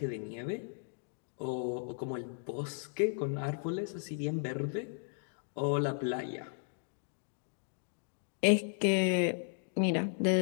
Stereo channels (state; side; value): silent; right; digital silence